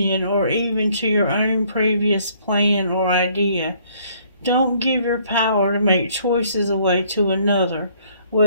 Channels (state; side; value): inverted; both; correlation -0.63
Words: or even to your own previous plan or idea. Don't give your power to make choices away to another,